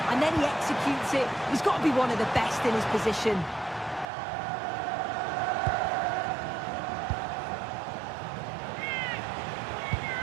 and then he executes it. He's got to be one of the best in his position.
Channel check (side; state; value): left; drops out; at 4.0 s